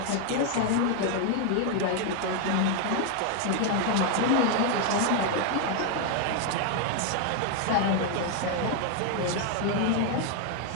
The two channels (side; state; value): both; different; correlation 0.00